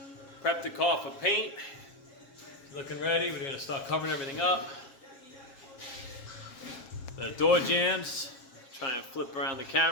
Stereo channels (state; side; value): late; right; 7.3 ms